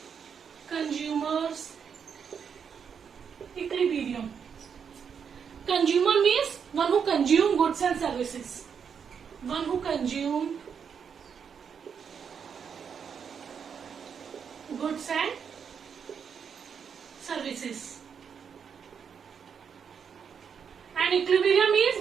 consumers equilibrium. Consumer means one who consume goods and services. One who consume goods and services. And equilibrium means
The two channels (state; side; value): quieter; left; 7.0 dB